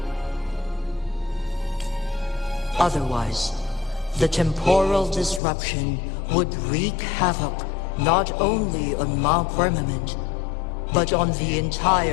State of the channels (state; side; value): drops out; right; at 5.4 s